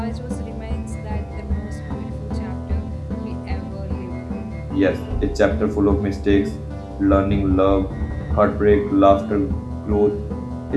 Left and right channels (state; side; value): identical; both; correlation 1.00